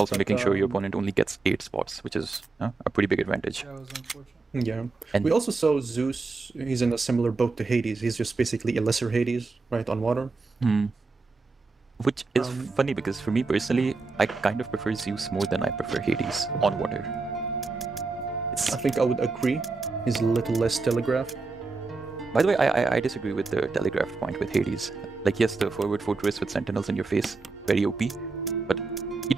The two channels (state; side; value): quieter; left; 3.9 dB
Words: making sure your opponent only gets 8 spots, which is a pretty big advantage. That was unfortunate. Yeah. And we also saw Zeus, he's in a similar boat to Hades, he's just basically a lesser Hades, right, on water. Which is funny because for me personally, I kind of prefer Zeus more than I prefer Hades on water. I think I would agree, he's a little less telegraphed. By the way, I disagree with the telegraphed point with Hades. Like, yes, the forward fortress with sentinels in your face, very OP, but he